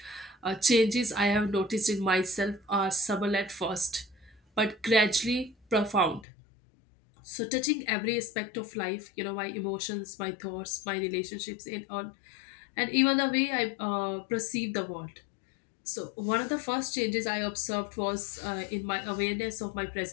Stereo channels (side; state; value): right; drops out; at 6.2 s